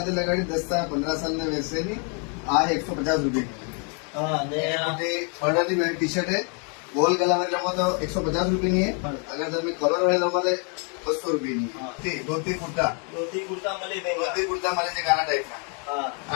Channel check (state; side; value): quieter; right; 38.4 dB